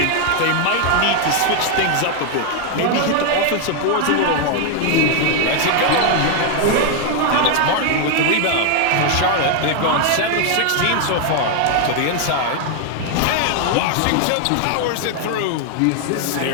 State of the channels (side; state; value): both; different; correlation 0.00